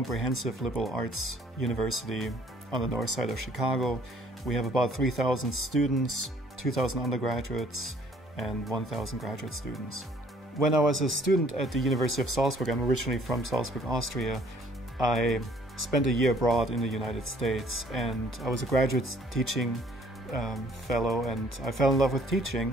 liberal arts university on the north side of Chicago. We have about 3,000 students, 2,000 undergraduates, and 1,000 graduate students. When I was a student at the University of Salzburg, I'm originally from Salzburg, Austria, I spent a year abroad in the United States, and I was a graduate teaching fellow, and I fell in love with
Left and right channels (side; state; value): both; normal; correlation 0.60